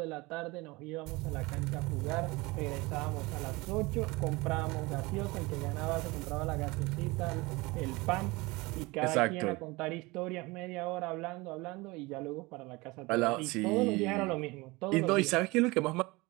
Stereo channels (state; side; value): quieter; left; 23.2 dB